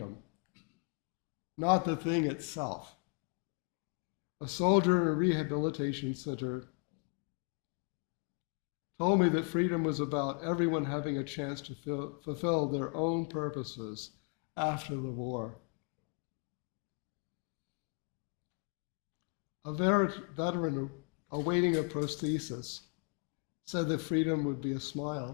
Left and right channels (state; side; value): quieter; right; 37.1 dB